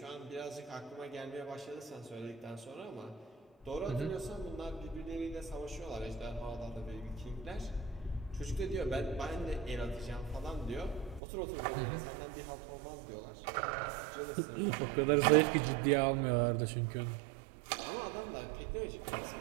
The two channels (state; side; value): drops out; left; at 11.2 s